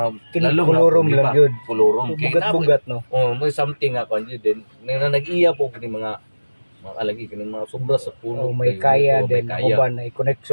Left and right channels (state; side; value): inverted; both; correlation -1.00